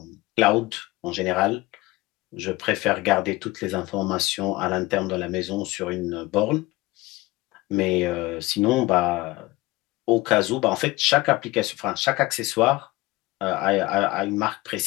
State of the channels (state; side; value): quieter; right; 20.1 dB